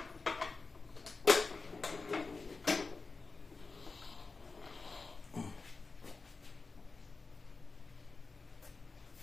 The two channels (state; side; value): quieter; right; 4.0 dB